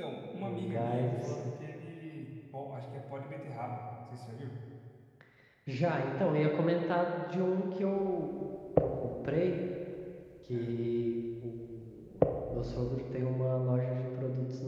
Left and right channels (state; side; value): identical; both; correlation 1.00